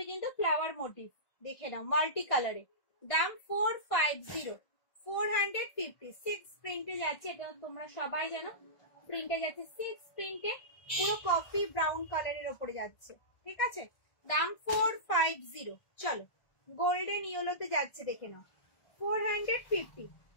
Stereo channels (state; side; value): late; right; 1.6 ms